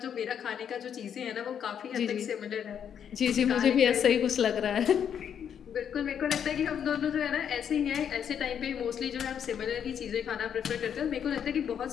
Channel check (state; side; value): quieter; right; 8.4 dB